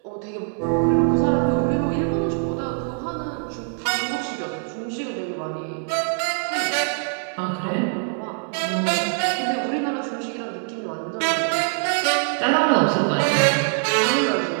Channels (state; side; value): silent; left; 56 dB below the other